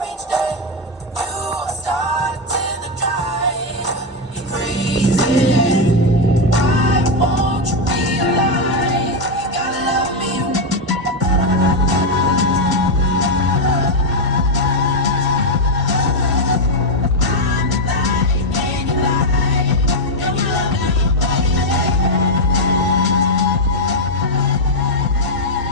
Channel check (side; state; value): both; normal; correlation 0.03